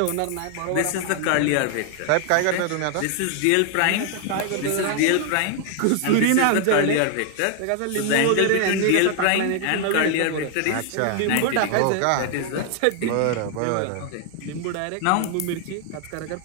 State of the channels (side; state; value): both; different; correlation 0.00